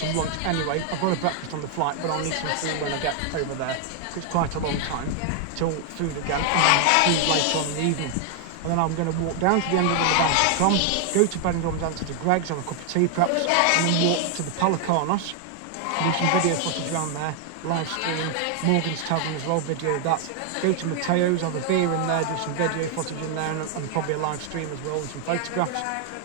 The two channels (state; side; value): different; both; correlation 0.00